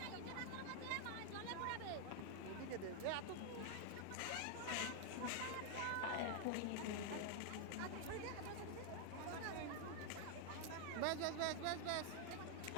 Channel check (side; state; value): both; different; correlation 0.00